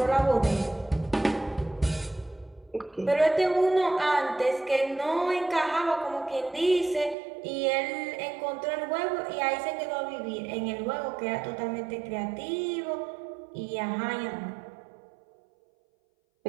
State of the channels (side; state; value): left; drops out; at 7.2 s